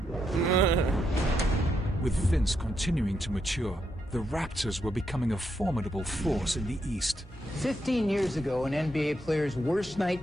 With Vince continuing to mature, the Raptors were becoming a formidable force in the East. 15 years ago, an NBA player's worst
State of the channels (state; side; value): normal; both; correlation 0.80